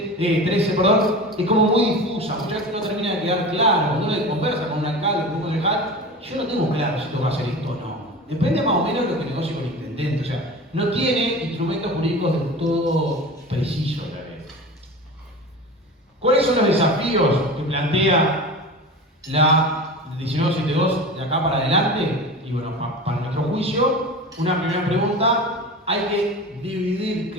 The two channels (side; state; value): both; normal; correlation 0.32